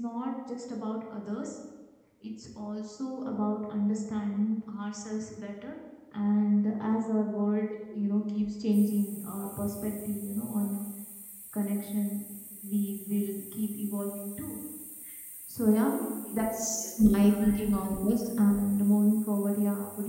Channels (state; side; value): identical; both; correlation 1.00